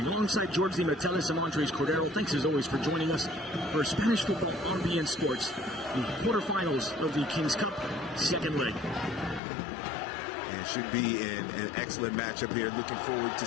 Alongside George Di Metellis and Andres Cordero, thanks as always for joining us for Spanish football on BN Sports. The quarterfinals of the King's Cup, second leg. It should be an excellent matchup here. Looking forward to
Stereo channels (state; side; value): drops out; right; at 9.4 s